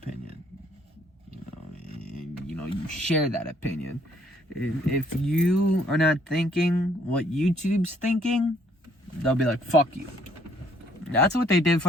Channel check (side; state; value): both; normal; correlation 0.65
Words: And, you share that opinion. If you are not thinking what YouTube's thinking, they'll be like, fuck you. That's what they did